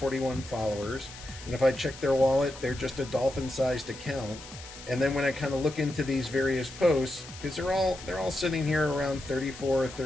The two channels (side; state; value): left; noise; hiss, 15 dB below the sound